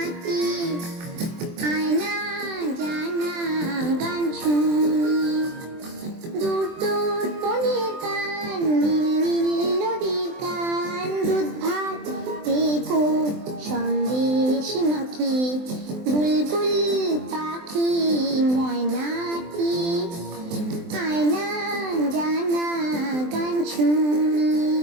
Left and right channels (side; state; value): left; late; 23 ms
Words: আয়না জানা গান শুনি। দূর দূর বনের গান, নীল নীল নদীর গান, দুধ ভাত দেবো সন্দেশ মাখি। বুলবুল পাখি ময়নাটি আয়না জানা গান শুনি।